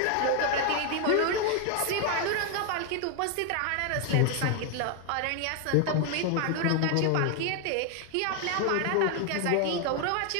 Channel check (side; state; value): both; different; correlation 0.00